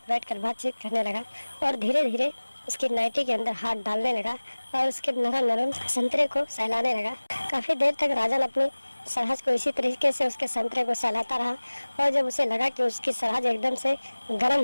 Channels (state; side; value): inverted; both; correlation -1.00